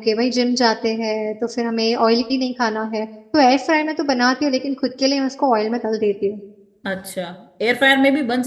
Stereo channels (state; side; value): identical; both; correlation 1.00